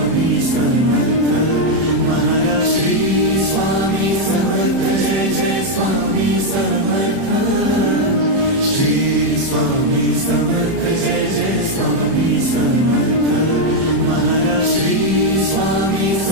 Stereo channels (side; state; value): left; late; 31 ms